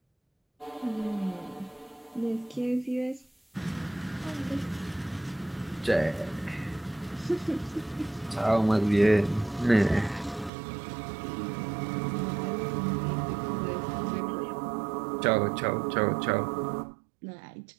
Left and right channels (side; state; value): left; drops out; at 10.5 s